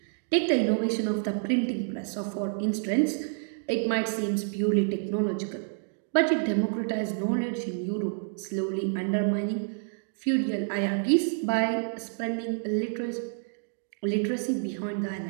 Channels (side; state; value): left; silent; digital silence